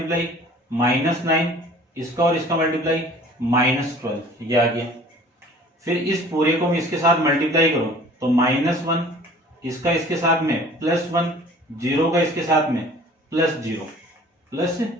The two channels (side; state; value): both; normal; correlation 0.49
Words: -9 इसका और इसका मल्टीप्लाई -12, ये आ गया। फिर इस पूरे को मैं इसके साथ मल्टीप्लाई करूं तो -1 इसका इसके साथ में +1 0 का इसके साथ में